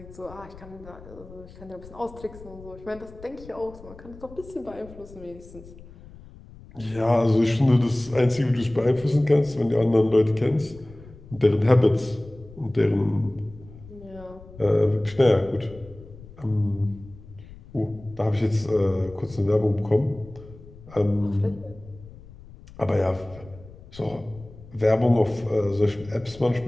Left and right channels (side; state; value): left; noise; rumble, 19 dB below the sound